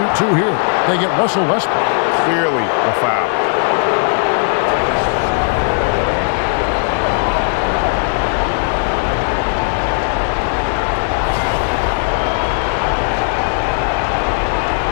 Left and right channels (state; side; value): silent; right; 60 dB below the other